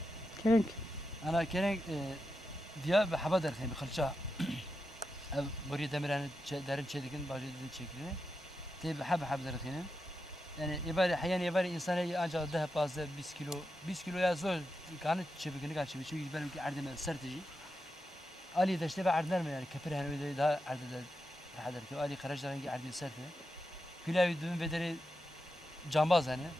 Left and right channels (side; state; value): both; normal; correlation 0.88